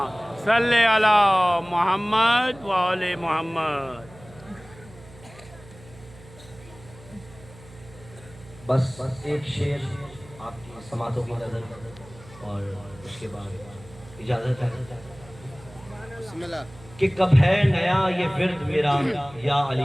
صلی علی محمد و آل محمد. بس ایک شعر آپ کی سماعتوں کی نظر اور اس کے بعد اجازت ہے. کہ کب ہے نیا یہ ورد میرا یا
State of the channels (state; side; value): noise; right; hum, 21 dB below the sound